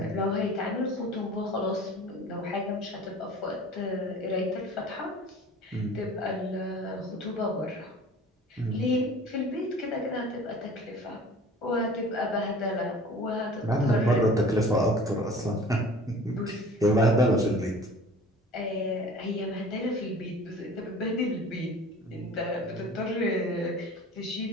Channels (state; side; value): normal; both; correlation 0.44